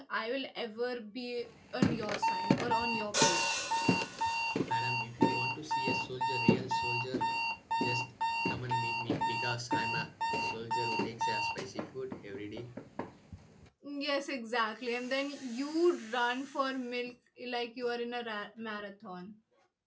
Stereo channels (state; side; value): identical; both; correlation 1.00